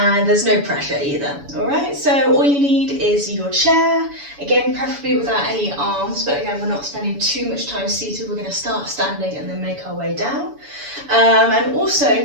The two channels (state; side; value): late; left; 7.0 ms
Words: there's no pressure either. Alright, so all you need is your chair, again preferably without any arms, but again we're not spending too much time seated, we're going to start standing and then make our way down. And also,